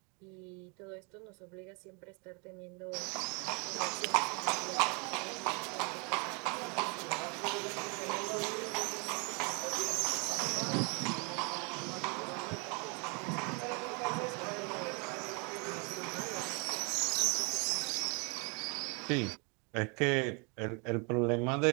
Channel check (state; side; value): quieter; left; 33.2 dB